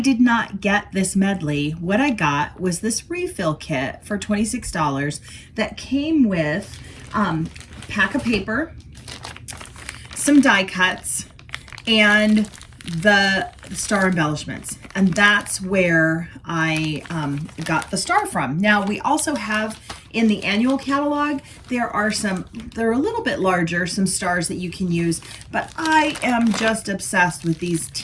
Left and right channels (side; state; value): both; identical; correlation 1.00